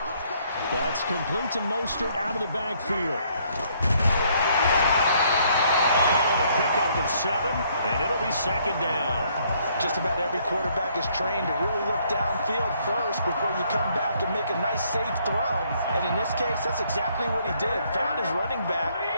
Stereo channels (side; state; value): both; inverted; correlation -0.67